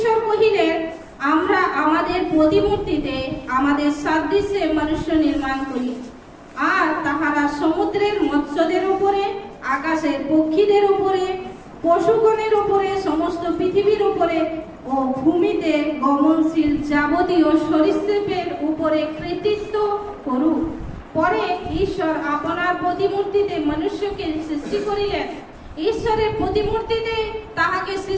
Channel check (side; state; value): both; identical; correlation 1.00